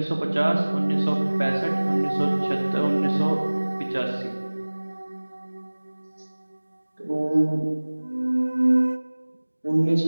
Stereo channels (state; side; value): inverted; both; correlation -1.00